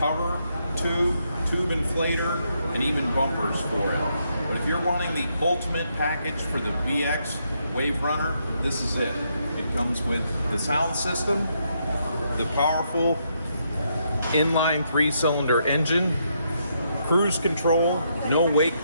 tube inflator, and even bumpers for it. But if you're wanting the ultimate package for the VX WaveRunner, this is it. It comes with the sound system, the powerful inline 3-cylinder engine, cruise control, no wake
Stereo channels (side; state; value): both; inverted; correlation -0.77